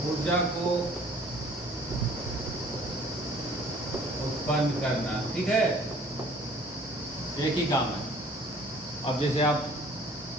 को उत्पन्न करना। ठीक है, एक ही काम है। अब जैसे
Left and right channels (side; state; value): both; normal; correlation 0.53